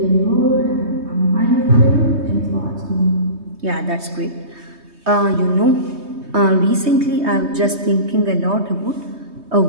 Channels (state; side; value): late; left; 3.2 ms